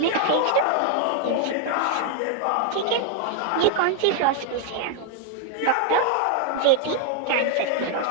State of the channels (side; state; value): both; different; correlation 0.00